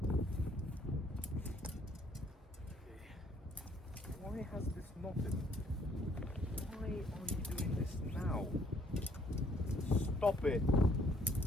Why has this not been? Why are you doing this now? Stop it.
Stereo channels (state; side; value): normal; both; correlation 0.64